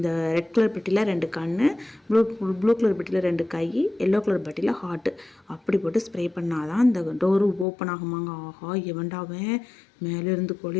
ரெட் கலர் பெட்டியில் 2 கண், ப்ளூ கலர் பெட்டியில் 2 கை, எல்லோ கலர் பெட்டியில் ஹார்ட்டு, அப்படி போட்டு ஸ்ப்ரே பண்ணாதான் இந்த டோரு ஓப்பன் ஆகுமாங்க. ஆஹா, எவன்டாவன் மேலேருந்து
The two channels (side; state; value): right; drops out; at 7.7 s